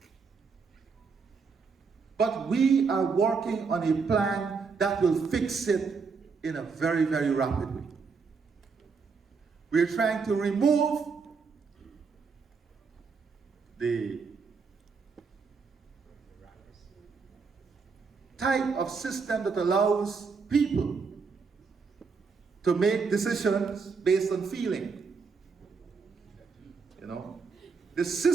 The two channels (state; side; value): quieter; left; 5.1 dB